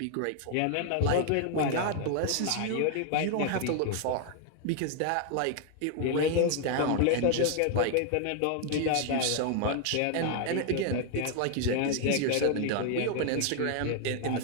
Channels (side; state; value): both; different; correlation 0.00